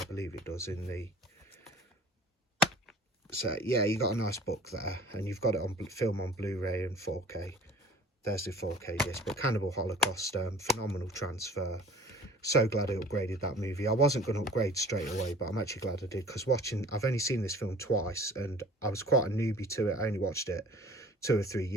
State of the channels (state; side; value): normal; both; correlation 0.47